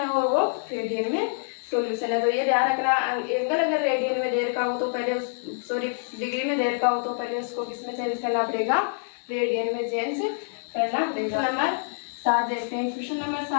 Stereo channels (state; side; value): silent; right; 61 dB below the other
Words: और वो रेडियन में सॉल्यूशन है। तो ये ध्यान रखना एंगल अगर रेडियन में दे रखा हो तो पहले डिग्री में दे रखा हो तो पहले उसको किस में चेंज करना पड़ेगा रेडियन में चेंज करना पड़ेगा। नंबर 7 देखते हैं। क्वेश्चन नंबर